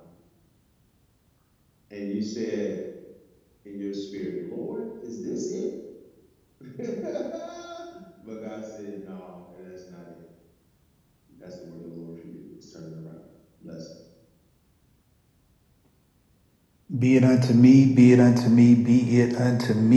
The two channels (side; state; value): both; identical; correlation 1.00